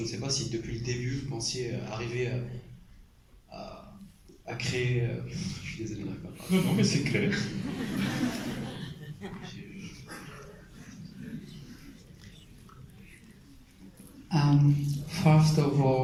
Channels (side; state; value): both; identical; correlation 1.00